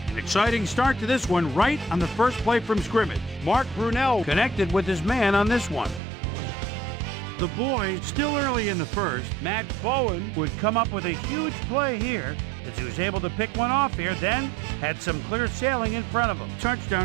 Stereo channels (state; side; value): drops out; left; at 6.0 s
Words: An exciting start to this one right on the first play from scrimmage. Mark Brunell connected with his man on this one. The boys, still early in the first, Matt Bowen would come up with a huge play here as he was able to pick one off here, then had some clear sailing in front of him.